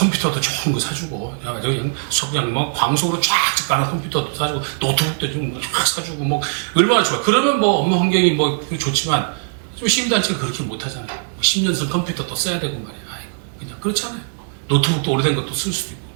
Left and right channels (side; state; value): left; silent; 66 dB below the other